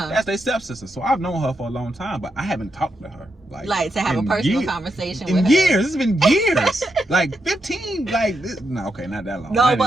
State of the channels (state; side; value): normal; both; correlation 0.83